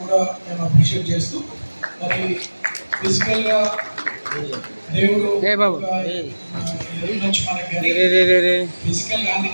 కూడా మేము అప్రిషియేట్ చేస్తూ, మరి ఫిజికల్గా దేవుడు నుంచి మనకి ఫిజికల్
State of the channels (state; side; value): inverted; both; correlation -1.00